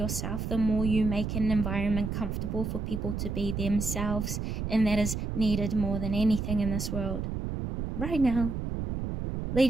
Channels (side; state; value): right; noise; rumble, 3 dB below the sound